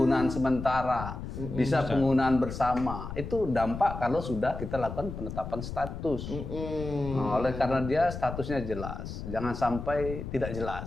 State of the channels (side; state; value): left; noise; rumble, 8 dB below the sound